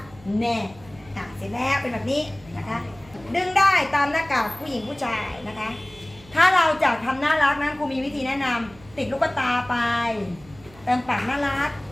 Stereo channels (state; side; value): noise; right; hum, 23 dB below the sound